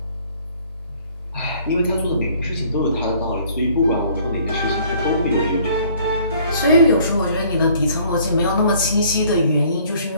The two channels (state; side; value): inverted; both; correlation -0.58